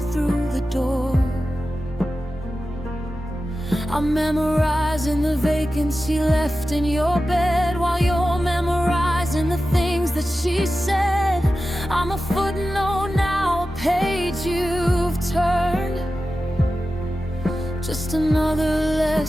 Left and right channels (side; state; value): both; normal; correlation 0.93